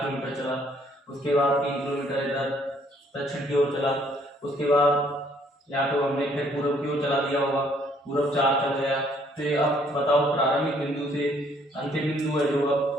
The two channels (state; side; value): normal; both; correlation 0.64